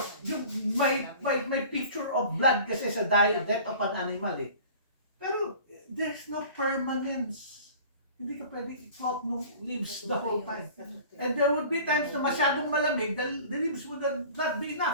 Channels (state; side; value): inverted; both; correlation -0.44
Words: yung may picture of blood kasi sa death of an animal eh. Pero there's no permanence. Hindi ka pwede i-float ng leaves the whole time. And there would be times na masyadong malamig, the leaves would not be